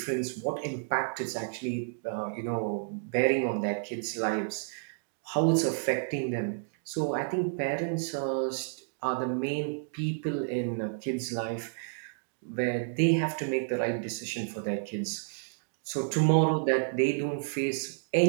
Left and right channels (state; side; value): silent; left; digital silence